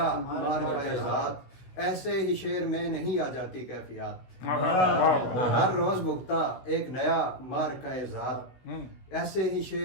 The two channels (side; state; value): right; late; 16 ms